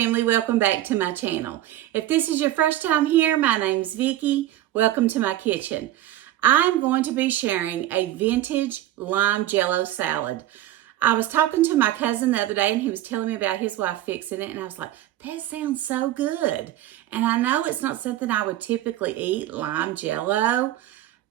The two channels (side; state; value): left; quieter; 14.0 dB